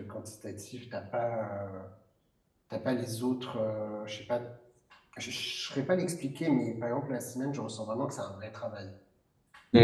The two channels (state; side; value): identical; both; correlation 1.00